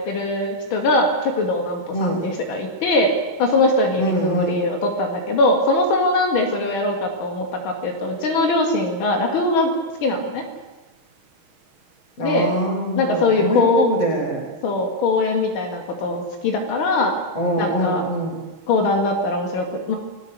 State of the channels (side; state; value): right; late; 6.3 ms